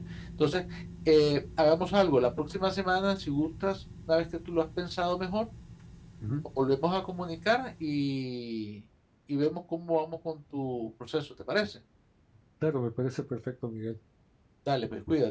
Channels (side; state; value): both; identical; correlation 1.00